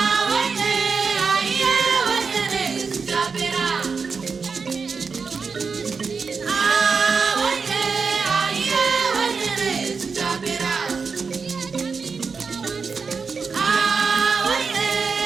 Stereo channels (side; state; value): left; quieter; 5.2 dB